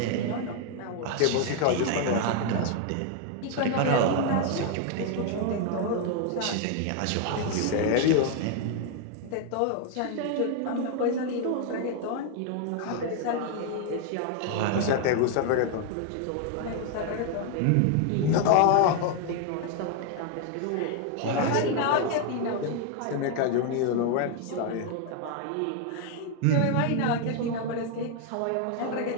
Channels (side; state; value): both; different; correlation 0.00